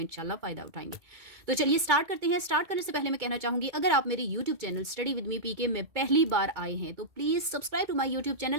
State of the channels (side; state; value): left; late; 2.2 ms